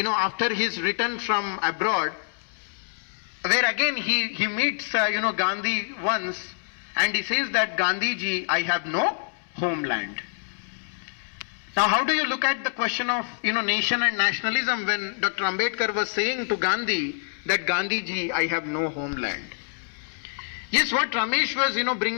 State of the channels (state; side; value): silent; right; 61 dB below the other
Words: his return from abroad, where again he meets, Gandhi once, and he says that Gandhiji, I have no homeland. Now how do you look at the question of, nation and nationalism when Dr. Ambedkar was saying to Gandhi that Gandhiji, I have no homeland? Yes, what Ramesh was,